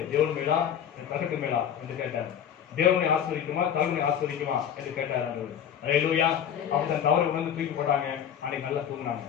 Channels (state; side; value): quieter; right; 9.0 dB